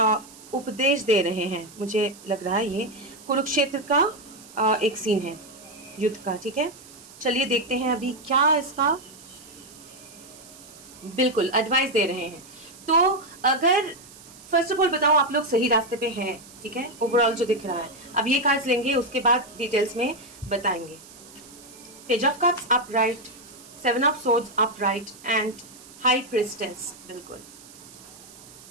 उपदेश दे रहे हैं, मुझे लग रहा है ये कुरुक्षेत्र का एक सीन है युद्ध का। ठीक है, चलिए देखते हैं अभी क्या इसका, बिल्कुल एडवाइस दे रहे हैं। तो अगर फर्स्ट ऑफ ऑल बताऊं आप लोग सही रास्ते पे हैं, ठीक है, ओवरऑल जो दिख रहा है। अब ये कार्ड्स लेंगे, उसके बाद डिटेल्स में बताएंगे। Page of cups upright, 7 of swords upright, and high priestess, बिल्कुल।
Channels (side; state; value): right; noise; hiss, 20 dB below the sound